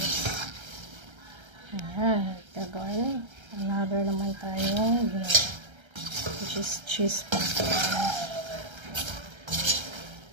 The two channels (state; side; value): late; left; 1.3 ms